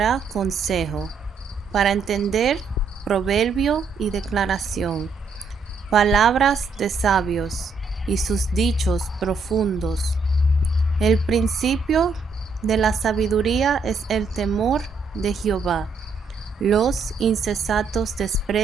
consejo, para entender proverbio y declaración, palabras de sabios y sus dichos profundos. El principio de la sabiduría es el temor de Jehová. Los insensatos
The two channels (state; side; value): quieter; left; 4.4 dB